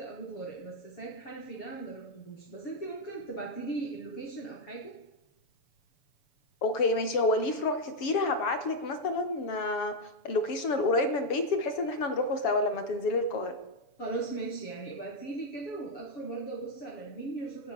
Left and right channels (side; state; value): right; late; 7.0 ms